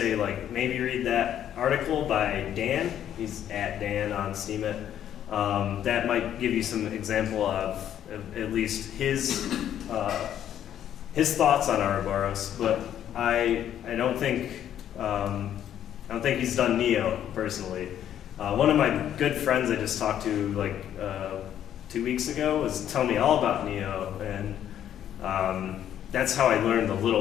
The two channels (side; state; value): right; quieter; 10.5 dB